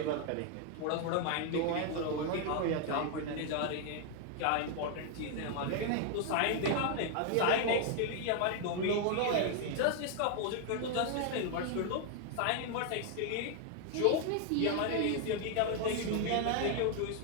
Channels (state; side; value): different; both; correlation 0.00